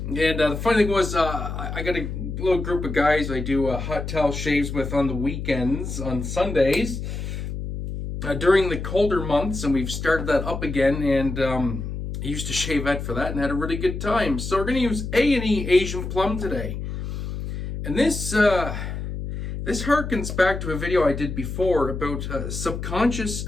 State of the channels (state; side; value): noise; left; hum, 6 dB below the sound